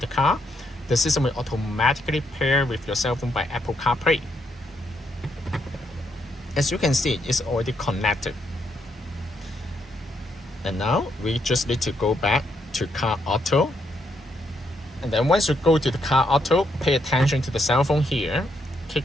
car, the system will automatically pair with your cell phone by Apple CarPlay. As you can see, it's already connected. And now we just need to go back to Car Auto. And then once you go to the Car Auto, pay attention to the cell phone here, click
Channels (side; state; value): both; normal; correlation 0.77